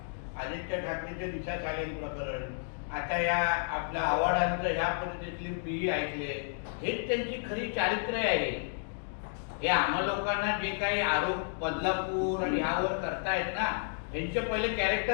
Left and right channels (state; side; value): silent; right; digital silence